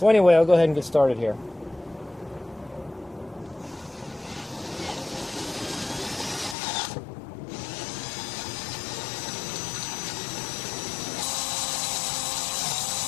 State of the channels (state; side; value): drops out; right; at 6.6 s